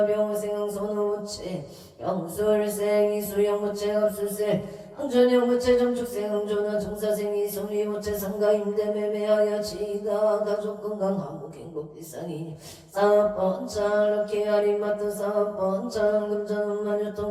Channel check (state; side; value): identical; both; correlation 1.00